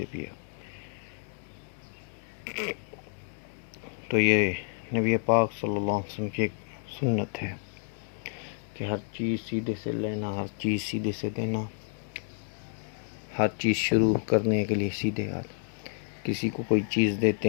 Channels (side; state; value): right; silent; 56 dB below the other